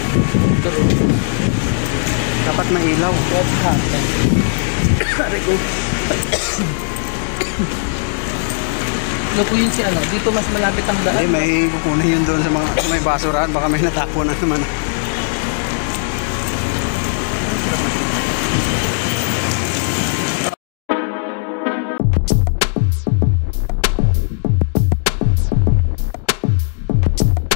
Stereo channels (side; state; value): right; silent; digital silence